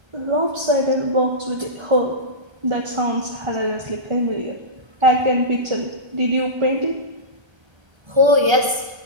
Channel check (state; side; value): late; left; 1.3 ms